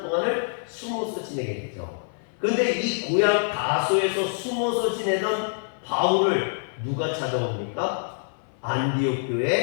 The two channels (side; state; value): right; silent; 56 dB below the other